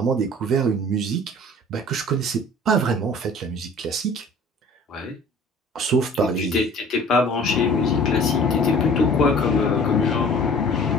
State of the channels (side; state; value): both; normal; correlation 0.47